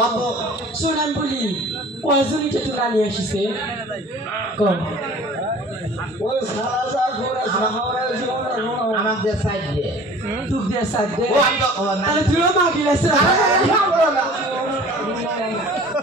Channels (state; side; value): normal; both; correlation 0.46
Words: শুন আমি বলি কয়জনই তো না নিয়ে আসিছে কম আমাদের সাইড দিয়ে তুক দিয়ে সাইড দিয়ে তাহলে তুইও মাগি লাগছে